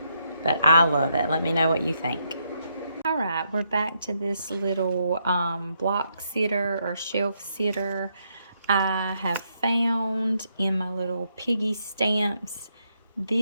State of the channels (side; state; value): both; inverted; correlation -0.77